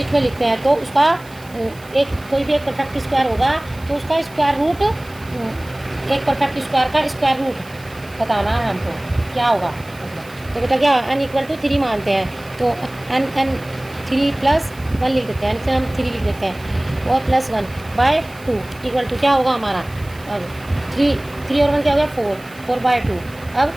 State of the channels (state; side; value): noise; right; hiss, 24 dB below the sound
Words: में लिखते हैं, तो उसका कोई भी एक परफेक्ट स्क्वायर होगा तो उसका स्क्वायर रूट एक परफेक्ट स्क्वायर का स्क्वायर रूट बताना है हमको क्या होगा। तो बेटा क्या n इक्वल टू 3 मानते हैं, तो n 3 + 1 लिख देते हैं, हम 3 लिख देते हैं और +1 बाय 2 इक्वल टू क्या होगा हमारा। अब 3 और 1 क्या हो गया 4 बाय 2। अब